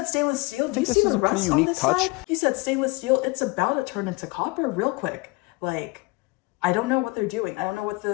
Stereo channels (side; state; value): right; quieter; 25.8 dB